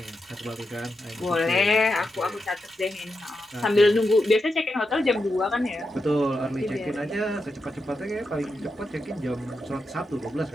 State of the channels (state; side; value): normal; both; correlation 0.87